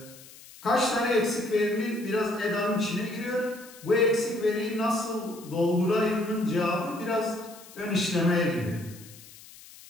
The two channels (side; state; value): left; noise; hiss, 20 dB below the sound